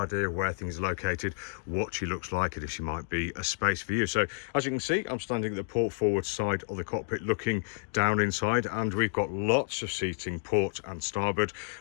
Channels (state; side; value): silent; right; digital silence